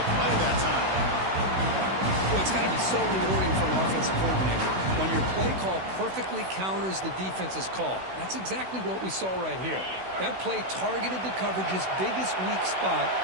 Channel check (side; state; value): left; late; 16 ms